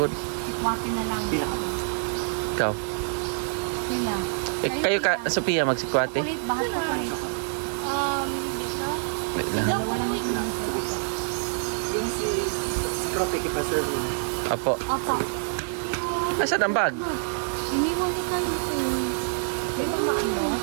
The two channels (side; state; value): left; silent; 61 dB below the other